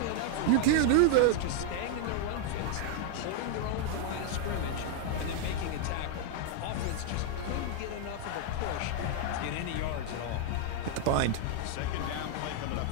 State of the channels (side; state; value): both; different; correlation -0.01